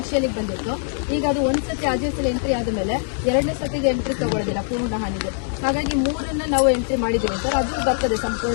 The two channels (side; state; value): right; silent; digital silence